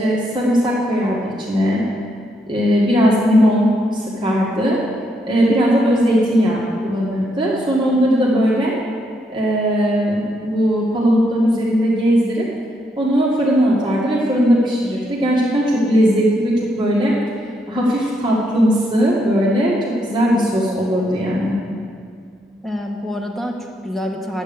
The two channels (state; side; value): normal; both; correlation 0.77